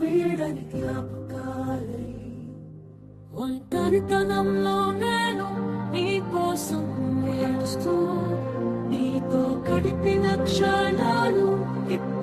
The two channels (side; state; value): both; identical; correlation 1.00